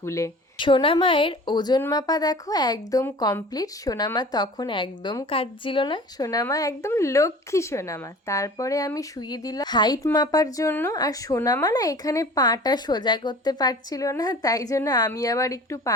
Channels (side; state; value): both; normal; correlation 0.42